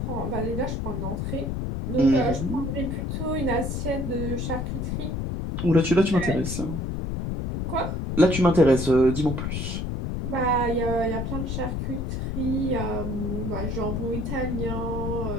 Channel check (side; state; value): left; noise; rumble, 2 dB below the sound